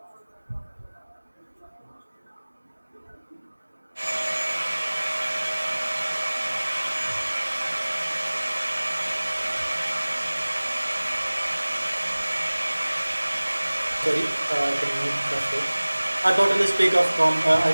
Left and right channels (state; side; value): inverted; both; correlation -1.00